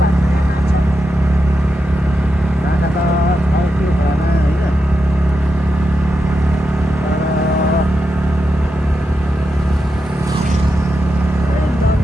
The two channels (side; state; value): both; normal; correlation 0.87